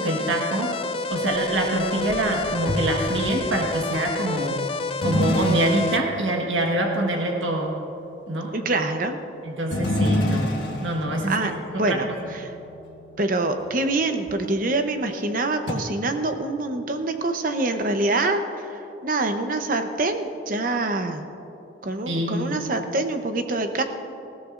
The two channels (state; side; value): normal; both; correlation 0.34